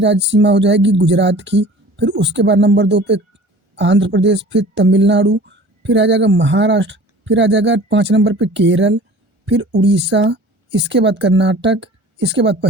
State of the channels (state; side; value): late; left; 1.4 ms